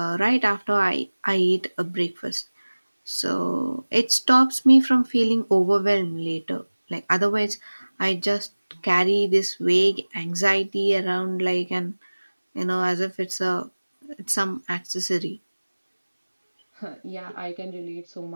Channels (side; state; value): both; inverted; correlation -1.00